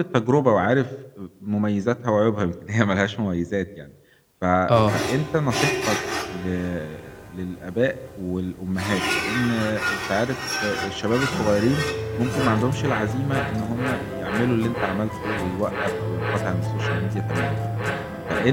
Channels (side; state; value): both; identical; correlation 1.00